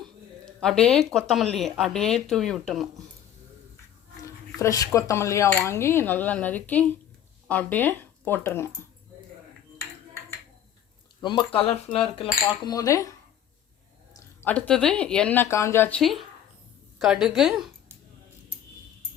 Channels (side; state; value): right; quieter; 10.3 dB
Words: அப்படியே கொத்தமல்லியை அப்படியே தூவி விட்டுணும். ஃப்ரெஷ் கொத்தமல்லியாக வாங்கி நல்லா நறுக்கி அப்படியே போட்டுருங்க. ரொம்ப கலர்ஃபுல்லாக இருக்குல்ல பார்க்கும்போதே. அடுத்தது எண்ணெய் காஞ்சாச்சு. கடுகு